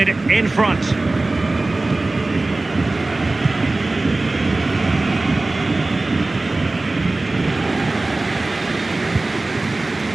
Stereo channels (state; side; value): quieter; left; 3.1 dB